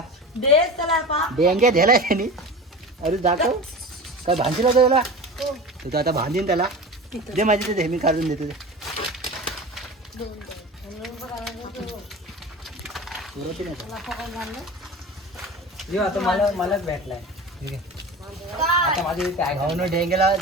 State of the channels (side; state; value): both; normal; correlation 0.32